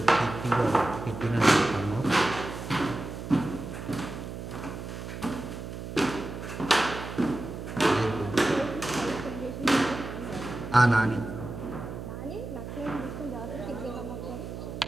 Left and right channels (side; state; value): right; noise; hum, 8 dB below the sound